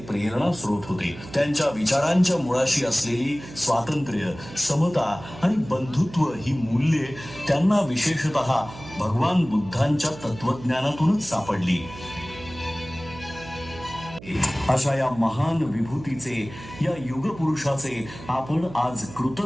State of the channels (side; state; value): right; noise; hum, 16 dB below the sound